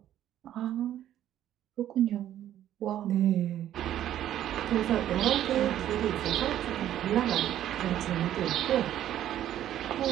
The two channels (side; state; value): left; quieter; 11.7 dB